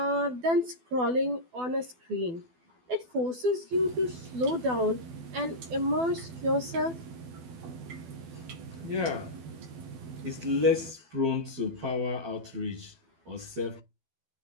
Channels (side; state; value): left; late; 12 ms